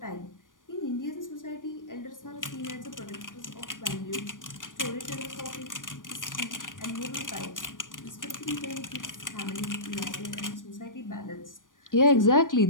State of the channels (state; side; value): late; right; 0.88 ms